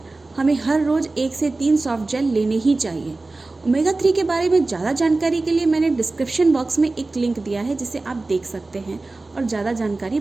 हमें हर रोज़ 1 से 3 सॉफ्ट जेल लेने ही चाहिए। ओमेगा 3 के बारे में ज़्यादा जानकारी के लिए मैंने डिस्क्रिप्शन बॉक्स में एक लिंक दिया है, जिसे आप देख सकते हैं और ज़्यादा जानकारी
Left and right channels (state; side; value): quieter; left; 3.3 dB